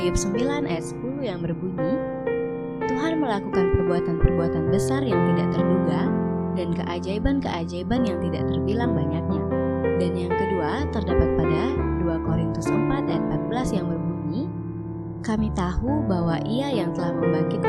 9 ayat 10 yang berbunyi, Tuhan melakukan perbuatan-perbuatan besar yang tidak terduga dan keajaiban-keajaiban yang tidak terbilang banyaknya. Dan yang kedua terdapat pada 2 Korintus 4 ayat 14 yang berbunyi, kami tahu bahwa Ia yang telah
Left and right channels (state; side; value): identical; both; correlation 1.00